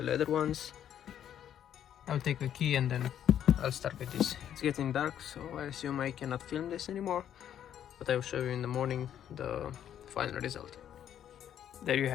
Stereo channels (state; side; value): quieter; right; 10.1 dB